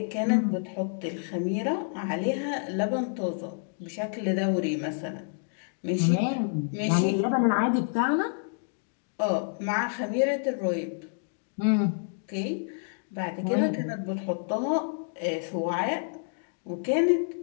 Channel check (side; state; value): right; silent; digital silence